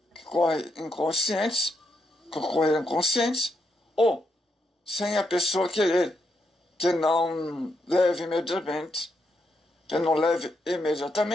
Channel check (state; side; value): normal; both; correlation 0.81